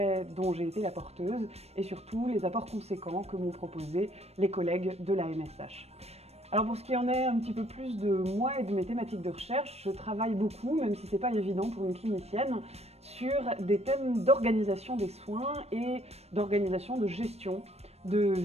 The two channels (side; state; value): left; late; 0.31 ms